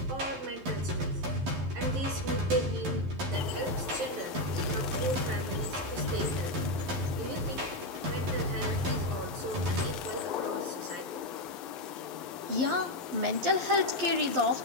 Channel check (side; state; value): left; late; 11 ms